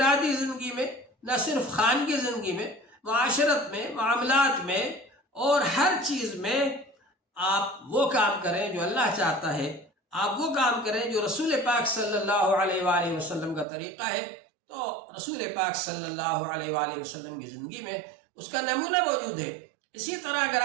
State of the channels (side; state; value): left; drops out; at 13.7 s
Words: زندگی میں، نہ صرف خانگی زندگی میں، معاشرت میں، معاملات میں، اور ہر چیز میں آپ وہ کام کریں جو اللہ چاہتا ہے، آپ وہ کام کریں جو رسول پاک صلی اللہ علیہ وآلہ وسلم کا طریقہ ہے۔ تو رسول پاک صلی اللہ علیہ وآلہ وسلم کی زندگی میں اس کا نمونہ موجود ہے۔ اسی طرح اگر